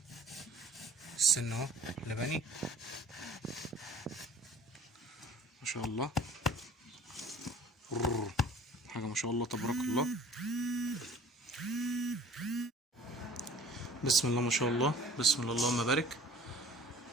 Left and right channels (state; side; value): normal; both; correlation 0.50